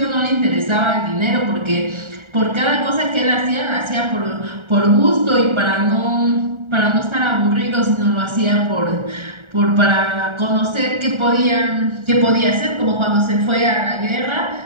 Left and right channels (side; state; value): left; late; 1.4 ms